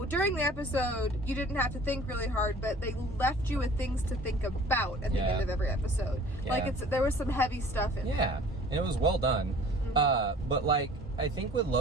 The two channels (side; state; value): both; normal; correlation 0.49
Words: during the episode, you didn't have to think really hard, but they left you with things to think about at the end of every episode. Yeah. Like, there was some heavy stuff in it. Yeah, and it was well done. Mm-hmm. But, like, I think with